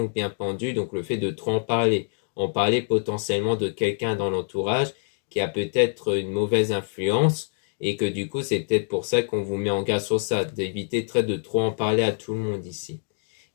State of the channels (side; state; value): right; silent; digital silence